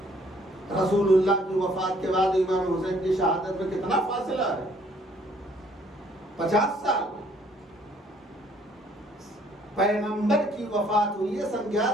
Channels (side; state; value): both; normal; correlation 0.62